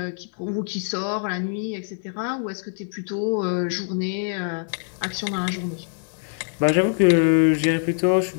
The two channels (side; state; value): right; silent; digital silence